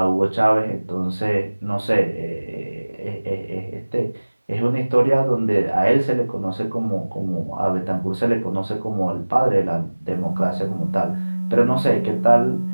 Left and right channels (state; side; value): inverted; both; correlation -1.00